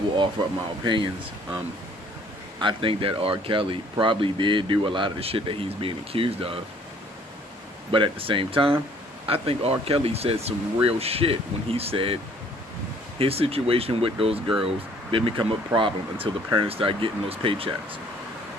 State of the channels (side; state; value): both; normal; correlation 0.59